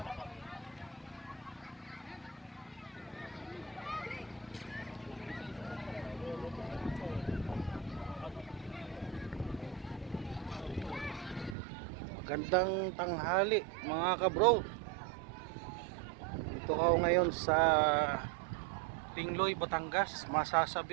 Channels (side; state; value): left; drops out; at 11.6 s